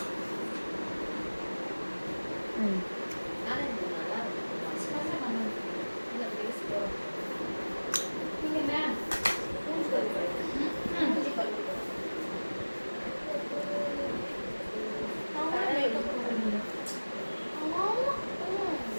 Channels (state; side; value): inverted; both; correlation -1.00